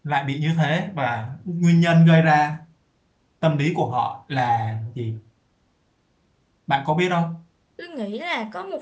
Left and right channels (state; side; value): identical; both; correlation 1.00